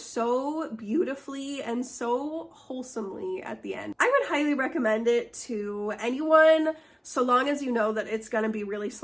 beautifully and so wholesomely at the end. I would highly recommend it to anyone, so long as you know that it's gonna be really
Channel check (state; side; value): identical; both; correlation 1.00